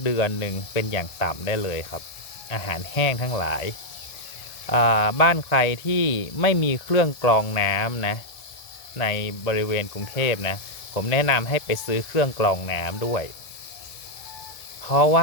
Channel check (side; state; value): right; late; 1.7 ms